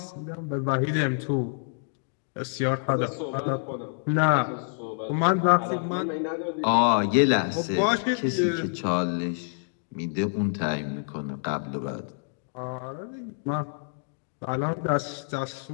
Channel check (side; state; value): right; silent; digital silence